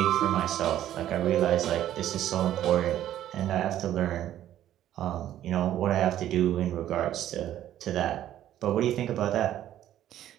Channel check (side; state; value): left; quieter; 12.1 dB